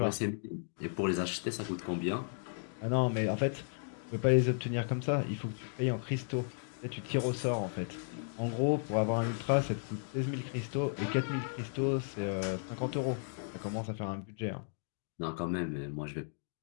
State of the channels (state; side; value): silent; right; digital silence